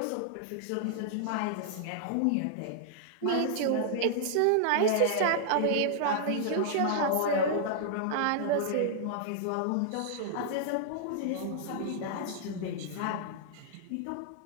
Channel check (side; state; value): both; different; correlation -0.01